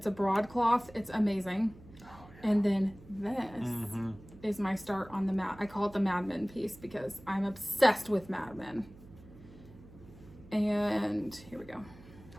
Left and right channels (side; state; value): right; noise; hum, 20 dB below the sound